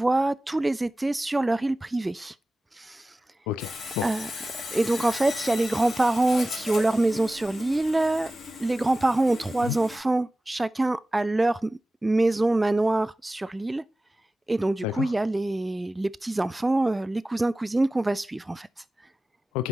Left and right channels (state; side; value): normal; both; correlation 0.96